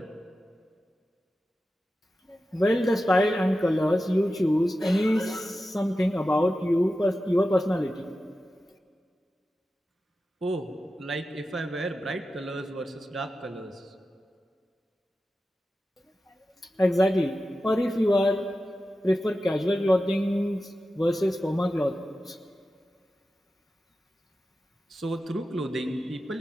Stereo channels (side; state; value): both; normal; correlation 0.93